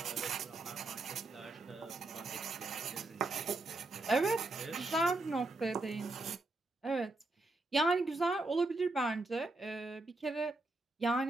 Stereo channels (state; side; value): quieter; left; 3.0 dB